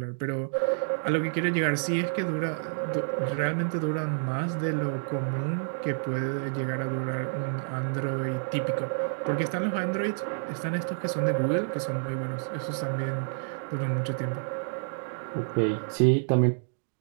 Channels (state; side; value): silent; left; digital silence